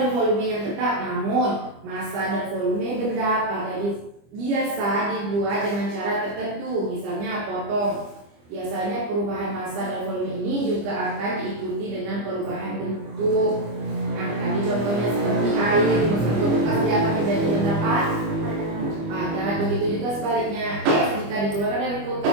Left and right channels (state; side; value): late; left; 25 ms